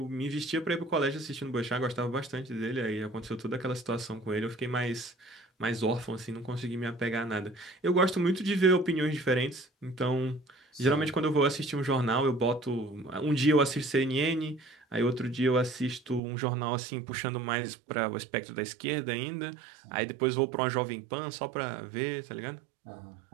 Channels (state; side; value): drops out; left; at 16.2 s